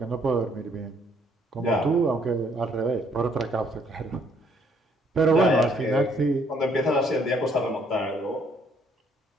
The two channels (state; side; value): normal; both; correlation 0.66